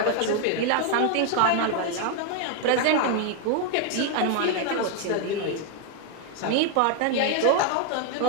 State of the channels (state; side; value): different; both; correlation 0.01